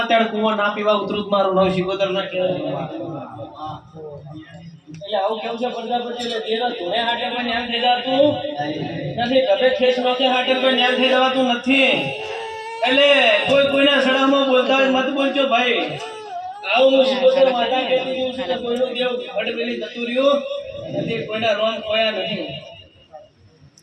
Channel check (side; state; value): both; identical; correlation 1.00